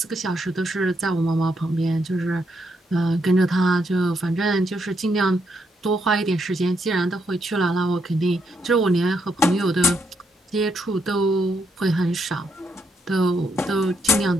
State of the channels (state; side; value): normal; both; correlation 0.77